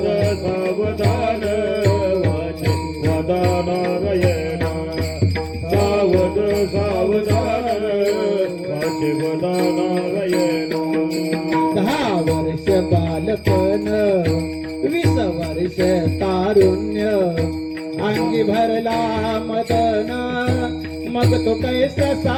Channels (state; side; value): identical; both; correlation 1.00